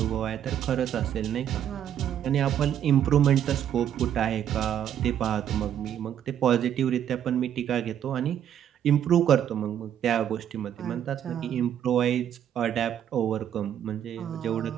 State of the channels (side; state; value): left; quieter; 9.9 dB